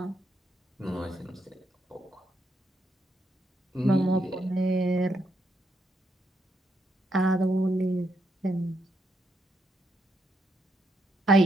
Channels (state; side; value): normal; both; correlation 0.78